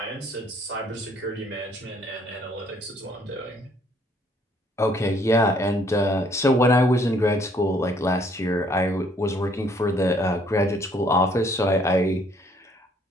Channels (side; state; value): both; normal; correlation 0.63